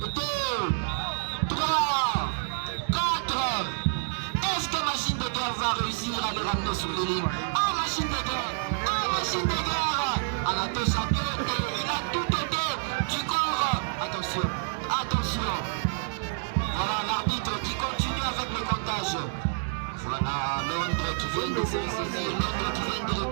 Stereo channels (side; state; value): left; silent; digital silence